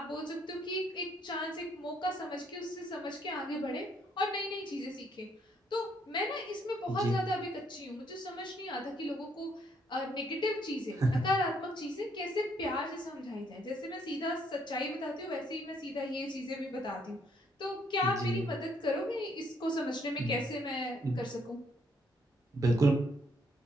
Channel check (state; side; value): normal; both; correlation 0.69